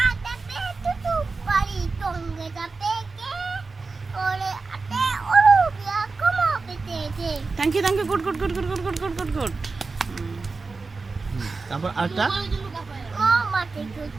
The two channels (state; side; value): quieter; left; 4.1 dB